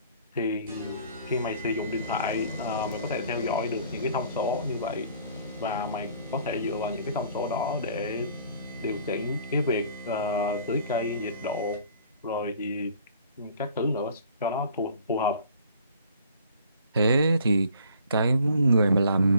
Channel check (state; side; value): inverted; both; correlation -0.54